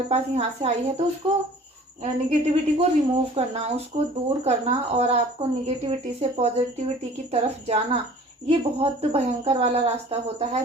पास यहाँ से आई है, तो उसको निगेटिविटी को रिमूव करना, उसको दूर करना और आपको निगेटिविटी से पॉजिटिविटी की तरफ जाना, ये बहुत भयंकर वाला रास्ता होता है।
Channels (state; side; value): normal; both; correlation 0.48